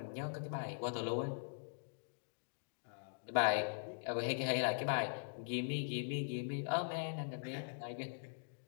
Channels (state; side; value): silent; right; digital silence